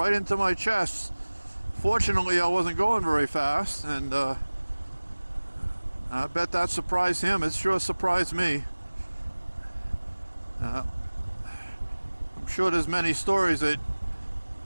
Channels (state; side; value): inverted; both; correlation -1.00